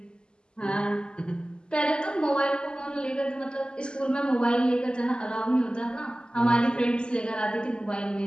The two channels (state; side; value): late; right; 0.049 ms